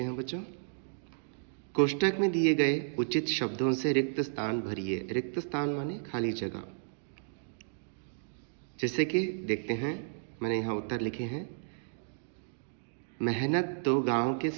हैं बच्चों। कोष्टक में दिए गए उचित शब्दों से रिक्त स्थान भरिए। रिक्त स्थान माने खाली जगह। जैसे कि देखते हैं, मैंने यहाँ उत्तर लिखे हैं। मेहनत तो गांव के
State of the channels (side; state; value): left; silent; digital silence